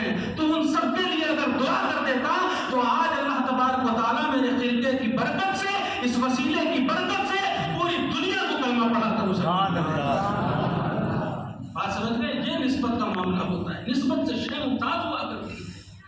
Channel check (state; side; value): identical; both; correlation 1.00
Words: تو ان سب کے لیے اگر دعا کر دیتا تو آج اللہ تبارک و تعالیٰ میرے خلیفے کی برکت سے، اس وسیلے کی برکت سے پوری دنیا کو کلمہ پڑھا کر سبحان اللہ. بات سمجھ گئے؟ یہ نسبت کا معاملہ ہوتا ہے. نسبت سے شے ممتاز ہوا کرتی ہے.